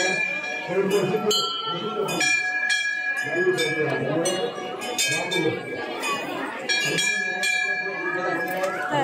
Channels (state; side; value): identical; both; correlation 1.00